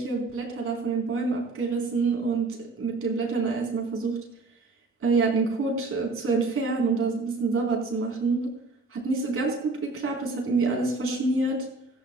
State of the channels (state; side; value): quieter; left; 3.5 dB